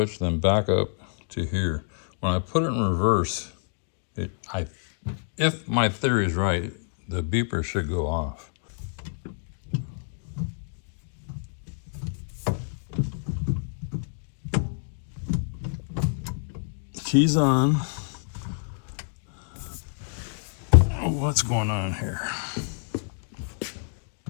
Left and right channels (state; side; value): silent; right; digital silence